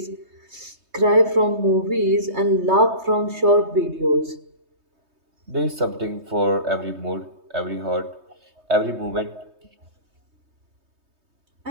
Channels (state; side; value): late; left; 3.2 ms